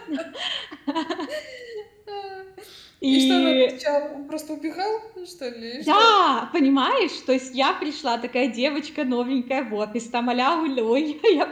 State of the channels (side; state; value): both; identical; correlation 1.00